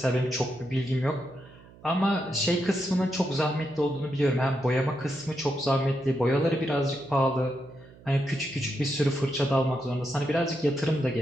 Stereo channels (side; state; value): right; noise; hum, 23 dB below the sound